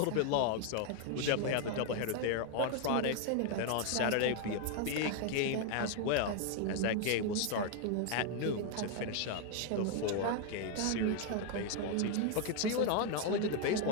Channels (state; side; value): different; both; correlation 0.00